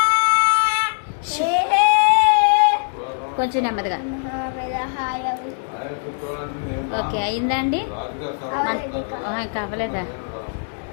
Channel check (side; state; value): right; silent; digital silence